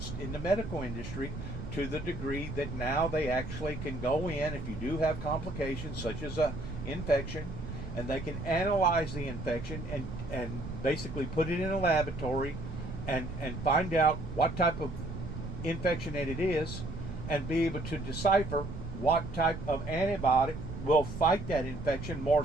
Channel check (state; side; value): noise; right; rumble, 8 dB below the sound